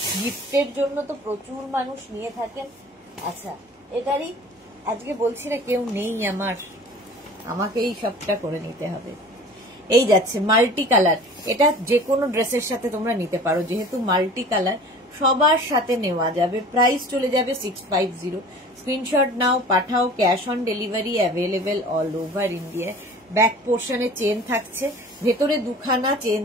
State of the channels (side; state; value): both; normal; correlation 0.44